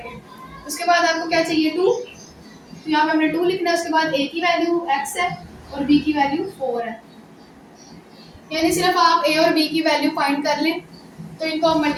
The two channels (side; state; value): both; identical; correlation 1.00